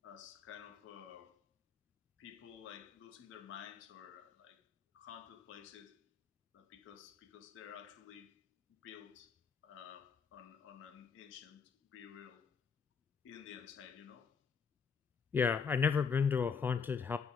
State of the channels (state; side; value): quieter; right; 6.0 dB